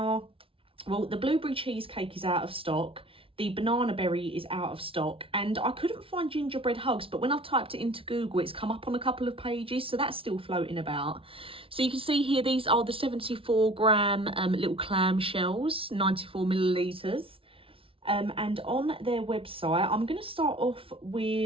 well, the Blueberry Cheesecake is out of stock, the Bananaberry is out of stock, and I couldn't find Gingerbread Hugs, but when I've typed it into Google, it's come up on a couple of pages, so that's still floating about. So you can see here, these are the 74 gram little clam shells, 94 millilitres. And on their website, I'm going to start off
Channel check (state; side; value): late; left; 0.26 ms